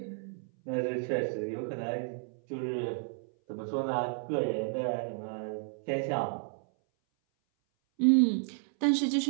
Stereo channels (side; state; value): left; silent; 57 dB below the other